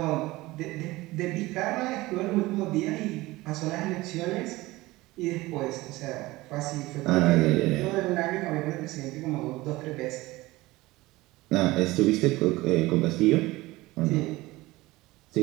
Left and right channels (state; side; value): quieter; left; 19.7 dB